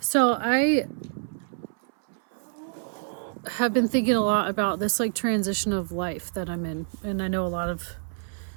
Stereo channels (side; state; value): left; silent; 60 dB below the other